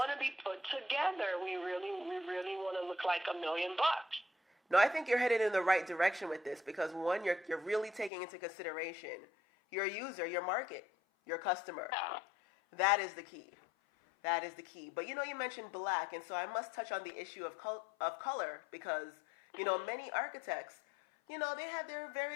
to be put together. We really want to look like $1 million. No, I think you're headed in the right direction with this because one, you're really taking into consideration your user, your market, your customer. Yeah. That is the key. That is the key. But you mentioned black, and so I must touch on the issue of color because many architects, they have their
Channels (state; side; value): drops out; right; at 8.1 s